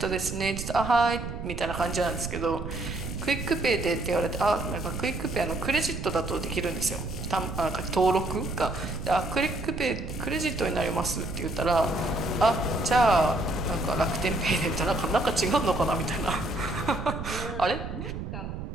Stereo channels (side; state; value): right; noise; rumble, 7 dB below the sound